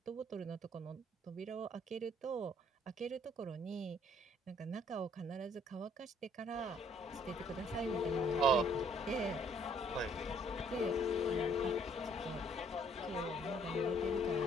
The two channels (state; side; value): normal; both; correlation 0.62